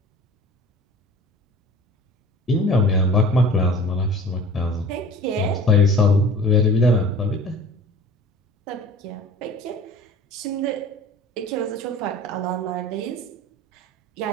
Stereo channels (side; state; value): both; normal; correlation 0.43